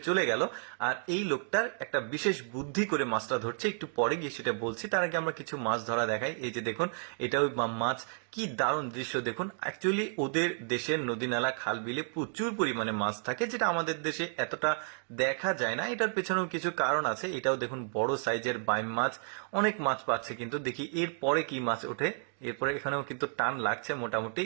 চলে গেল, আর এই লোকটার একটা বিশেষ বুদ্ধি করে মাছটা ধরছে, একটু পরে গিয়ে সেটা বলছি। তার আগে আমরা কিছু মাছ ধরা দেখাই। এই যে দেখুন, এটা ওই মাছ, কি দারুণ দৃশ্য দেখুন। অ্যাকচুয়ালি ওদের দেশের নদী নালা খাল বিলে প্রচুর পরিমাণে মাছ থাকে, যেটা আমাদের দেশে এতটা দেখা যায় না। এটার পেছনেও কিছু কারণ আছে। এটাও দেখুন বড় সাইজের বাইম মাছ, অনেক মাছ পাচ্ছে। কিন্তু দেখি এর পরে কি মাছ ওঠে। এরপরে এখানেও কিন্তু টান লাগছে মোটামুটি,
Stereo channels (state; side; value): silent; left; 57 dB below the other